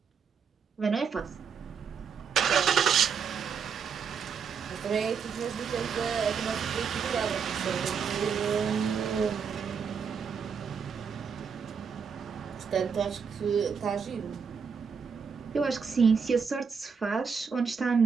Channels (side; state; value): left; quieter; 6.3 dB